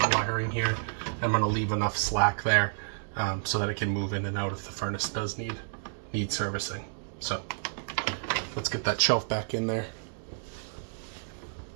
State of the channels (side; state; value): left; silent; digital silence